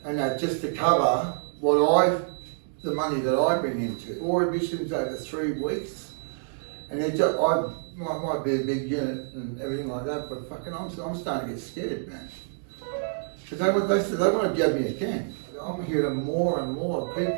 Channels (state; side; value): silent; left; digital silence